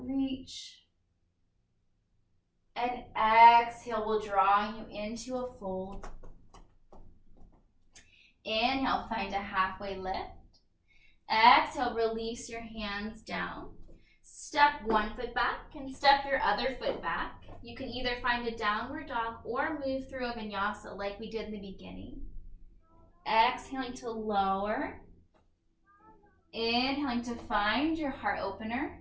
And exhale will draw you into a fold. Inhale, find a halfway lift. Exhale, release your hands down. Step one foot back and step your other foot back. You can either find a downward dog or move through a vinyasa like we did in the beginning. Exhaling to lower. Inhaling to find your heart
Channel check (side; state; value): both; identical; correlation 1.00